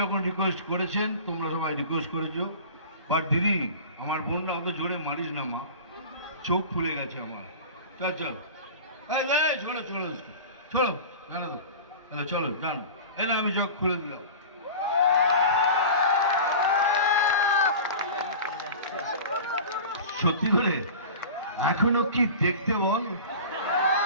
যখন রিকোয়েস্ট করেছেন, তোমরা সবাই রিকোয়েস্ট করেছো, বাট দিদি আমার বোনরা অত জোরে মারিস না মা, চোখ ফুলে গেছে আমার। চল চল, চলো চলো চলো, জানো তো, চলো জানো, এলে আমি চোখ খুলে দিলাম। সত্যি করে এখনো কি দেখতে বল?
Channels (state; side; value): inverted; both; correlation -0.36